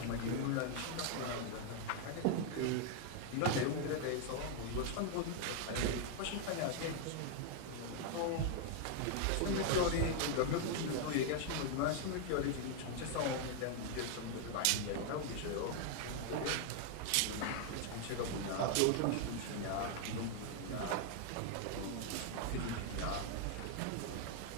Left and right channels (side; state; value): both; different; correlation 0.00